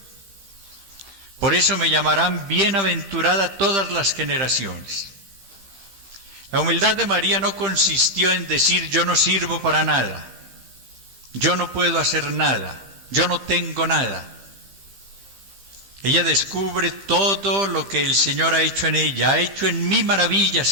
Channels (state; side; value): late; left; 15 ms